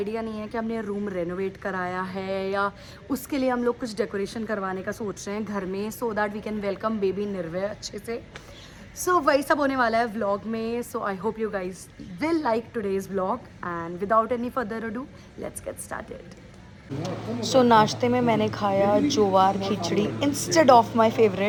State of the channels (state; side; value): identical; both; correlation 1.00